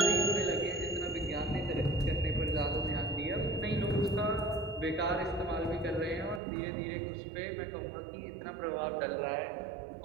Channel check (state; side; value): drops out; left; at 6.4 s